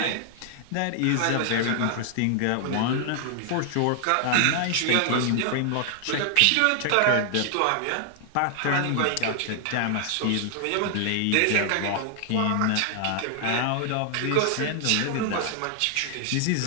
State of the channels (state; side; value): different; both; correlation 0.00